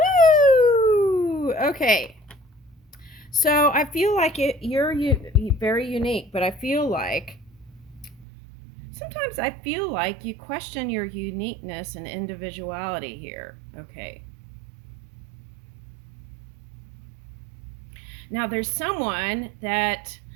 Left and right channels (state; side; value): drops out; left; at 8.2 s